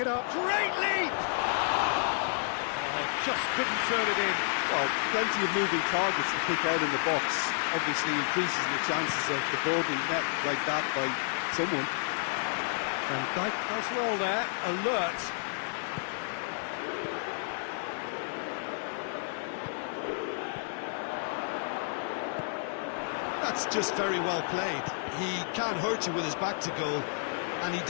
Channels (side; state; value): right; silent; 57 dB below the other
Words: up. Great leap! Oh, just couldn't turn it in. Well, plenty of moving targets to pick out in the box. Obviously increases the chances of the ball being met like that by someone. Van Dijk does well there, alert. That's just very well played. He can't hurt you with his back to goal, and he